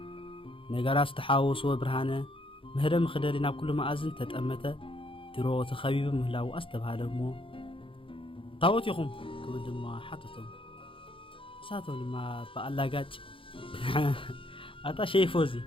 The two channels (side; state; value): right; late; 0.25 ms